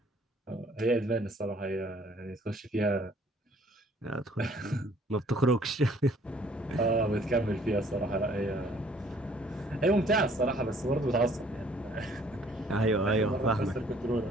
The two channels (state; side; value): normal; both; correlation 0.59